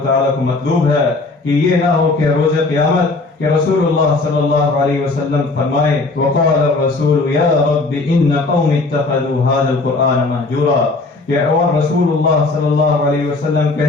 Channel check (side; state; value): right; quieter; 3.5 dB